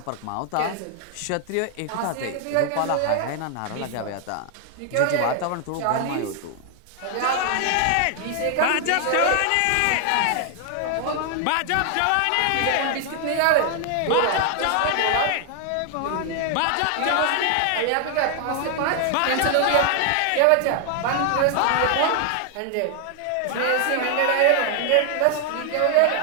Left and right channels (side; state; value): both; different; correlation 0.00